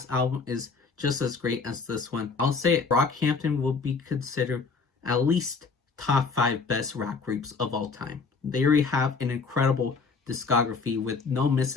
album is just as great as this one, I'll say Brockhampton will be considered at least top 5 best rap groups of all time. They already have an incredible discography with no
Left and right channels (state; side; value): quieter; right; 4.7 dB